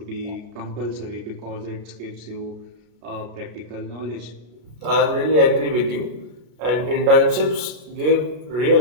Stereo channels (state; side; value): late; left; 33 ms